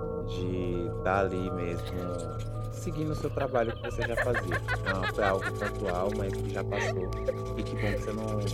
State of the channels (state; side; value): identical; both; correlation 1.00